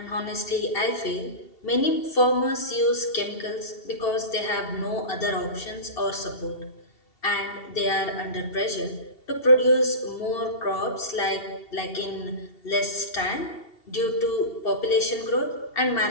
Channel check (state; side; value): late; right; 2.7 ms